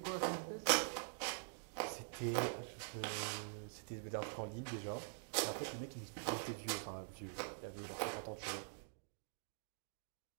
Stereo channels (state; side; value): silent; left; digital silence